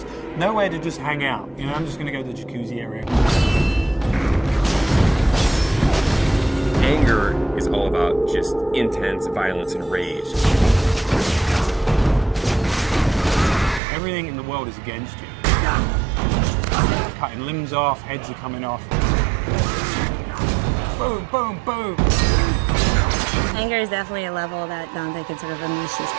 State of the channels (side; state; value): left; drops out; at 13.8 s